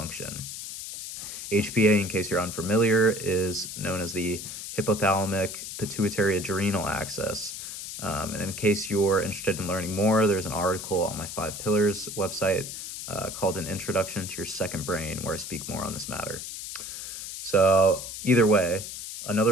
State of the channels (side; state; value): left; noise; hiss, 8 dB below the sound